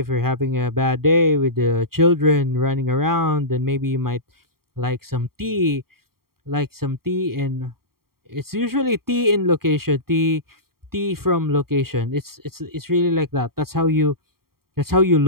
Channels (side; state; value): left; late; 0.93 ms